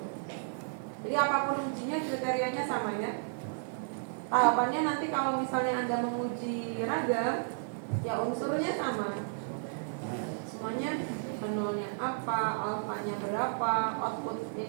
Jadi apapun ujinya kriterianya sama ya. Tahapannya nanti kalau misalnya Anda menguji ragam, ya unsurnya sama. Semuanya nolnya apa, alfanya berapa, output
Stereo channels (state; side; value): silent; left; digital silence